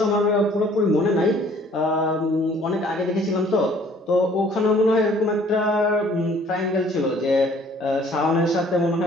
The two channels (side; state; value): both; normal; correlation 0.57